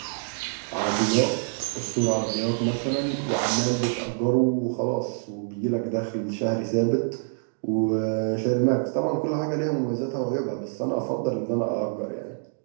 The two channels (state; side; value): silent; left; digital silence